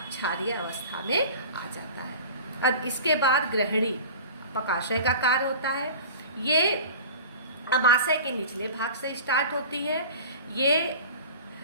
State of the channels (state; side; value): inverted; both; correlation -0.38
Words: क्षारीय अवस्था में आ जाता है। अब इसके बाद ग्रहणी पकाशय का कार्य होता है। ये आमाशय के निचले भाग से स्टार्ट होती है। ये